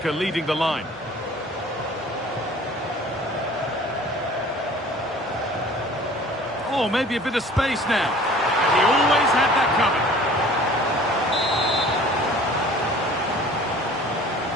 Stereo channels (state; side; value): normal; both; correlation 0.48